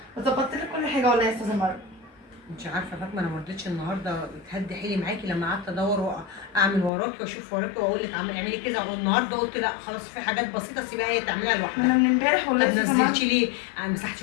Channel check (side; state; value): right; drops out; at 6.9 s